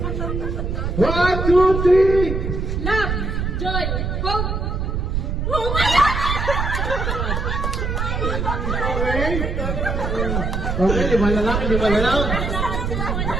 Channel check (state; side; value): noise; right; rumble, 1 dB below the sound